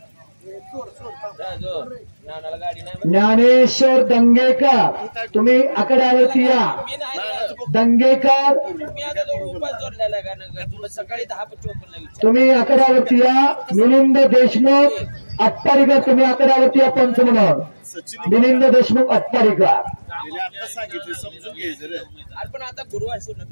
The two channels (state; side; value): inverted; both; correlation -1.00